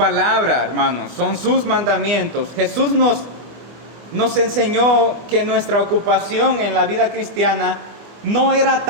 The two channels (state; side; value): late; left; 25 ms